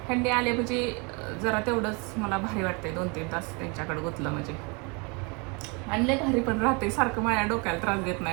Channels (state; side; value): quieter; left; 31.2 dB